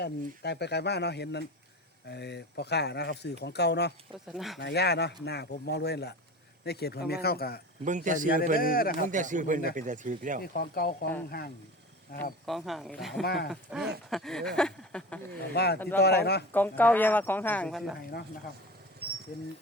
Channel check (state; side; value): normal; both; correlation 0.32